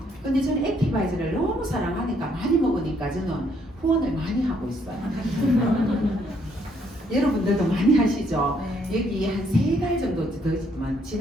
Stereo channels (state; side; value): normal; both; correlation 0.70